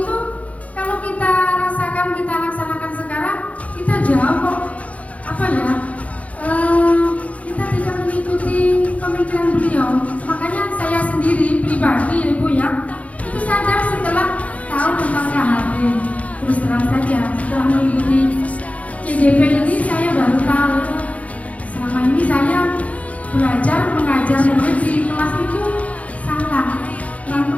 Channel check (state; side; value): late; right; 0.067 ms